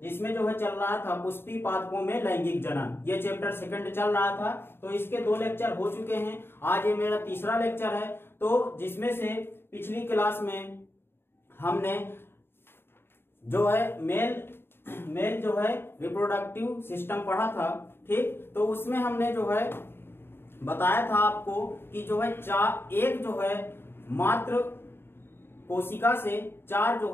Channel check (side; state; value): right; late; 0.11 ms